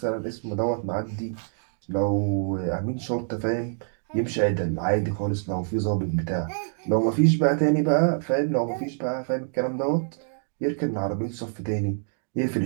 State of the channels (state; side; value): silent; left; digital silence